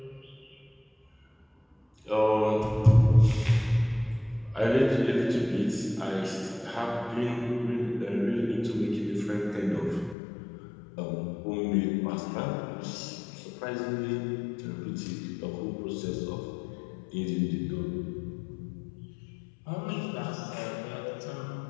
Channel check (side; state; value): right; drops out; at 10.2 s